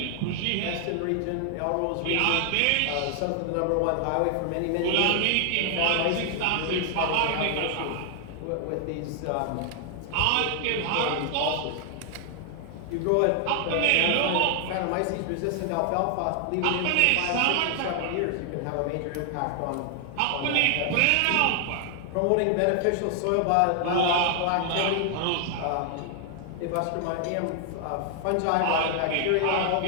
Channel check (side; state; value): both; different; correlation 0.00